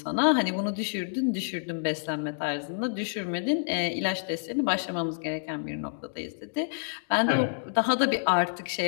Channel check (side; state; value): right; silent; digital silence